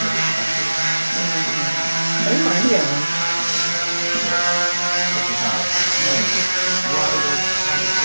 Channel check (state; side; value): inverted; both; correlation -1.00